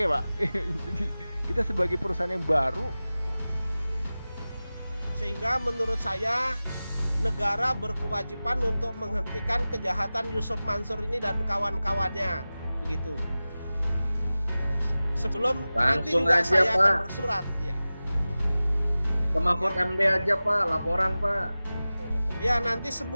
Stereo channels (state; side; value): inverted; both; correlation -0.97